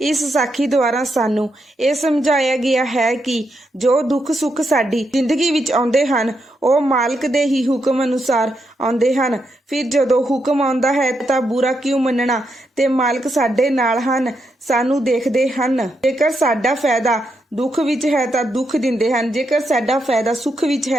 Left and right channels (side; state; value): both; normal; correlation 0.82